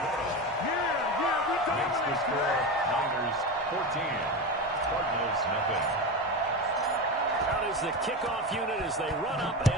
Makes the score Niners 14, Cardinals nothing. Out is the kickoff unit as they run up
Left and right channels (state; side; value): normal; both; correlation 0.20